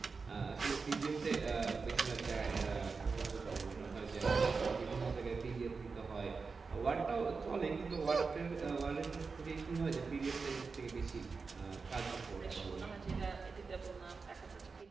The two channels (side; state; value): left; quieter; 4.7 dB